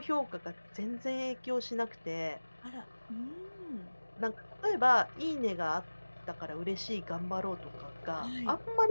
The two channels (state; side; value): inverted; both; correlation -1.00